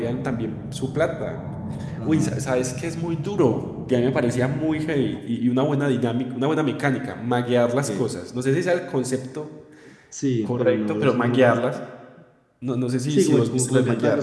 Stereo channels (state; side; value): identical; both; correlation 1.00